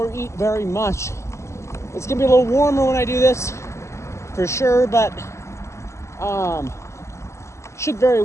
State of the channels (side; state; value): right; late; 0.13 ms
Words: eat very much. It's gonna be a little warmer when I do this, for sure, but should very